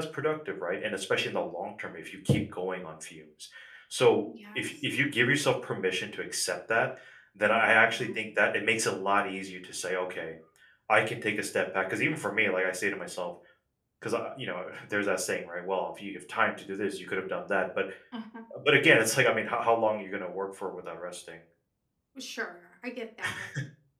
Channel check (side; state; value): both; identical; correlation 1.00